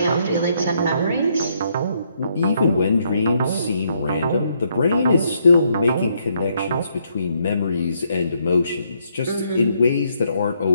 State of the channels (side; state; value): both; inverted; correlation -0.74